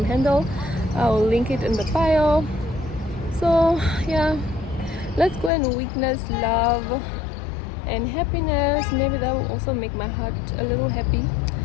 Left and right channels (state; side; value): drops out; right; at 5.5 s